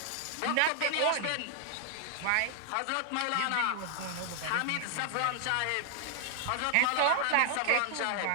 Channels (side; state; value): both; different; correlation 0.00